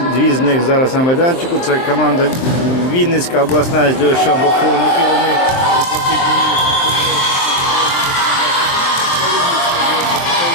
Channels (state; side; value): late; right; 23 ms